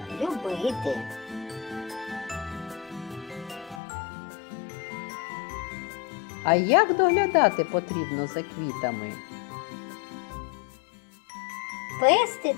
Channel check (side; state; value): right; drops out; at 3.8 s